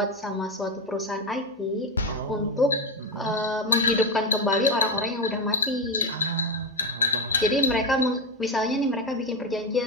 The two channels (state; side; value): normal; both; correlation 0.12